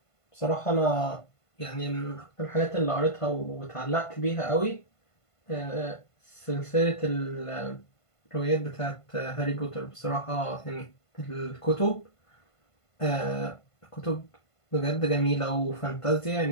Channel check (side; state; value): right; late; 1.5 ms